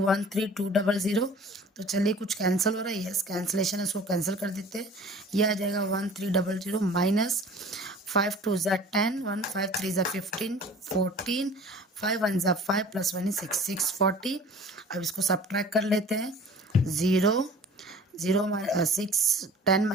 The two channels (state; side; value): normal; both; correlation 0.46